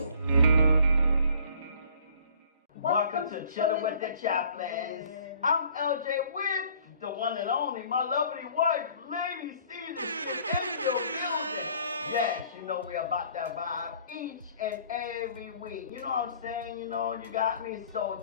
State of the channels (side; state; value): both; inverted; correlation -0.55